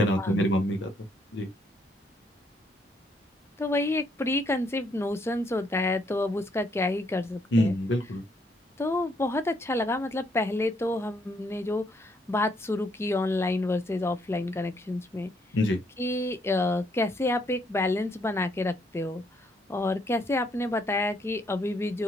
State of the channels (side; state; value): both; normal; correlation 0.71